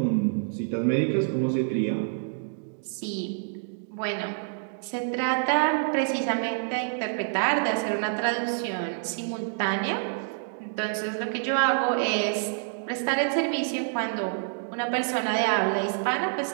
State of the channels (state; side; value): silent; left; digital silence